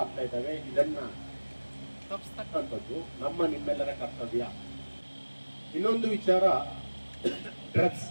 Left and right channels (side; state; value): both; inverted; correlation -1.00